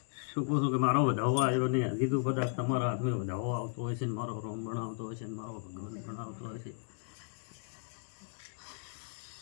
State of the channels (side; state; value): right; silent; digital silence